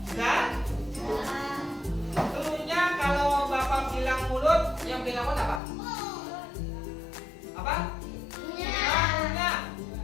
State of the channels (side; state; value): right; drops out; at 5.6 s